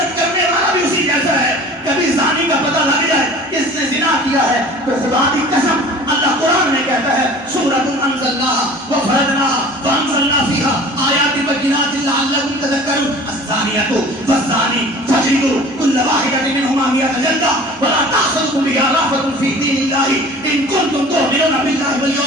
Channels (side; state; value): both; normal; correlation 0.44